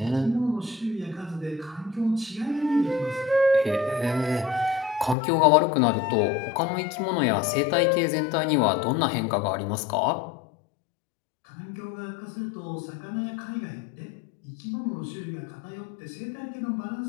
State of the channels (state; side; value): drops out; right; at 5.2 s